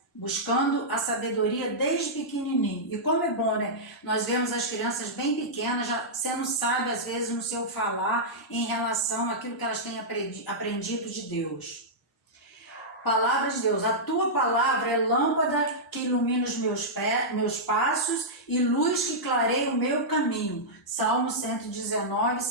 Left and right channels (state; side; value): normal; both; correlation -0.11